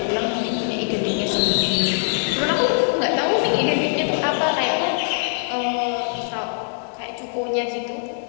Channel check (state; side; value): silent; right; digital silence